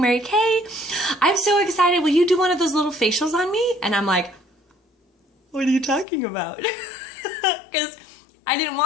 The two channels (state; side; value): drops out; right; at 6.1 s